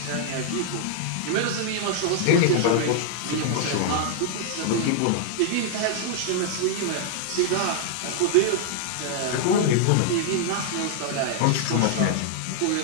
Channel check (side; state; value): both; different; correlation -0.01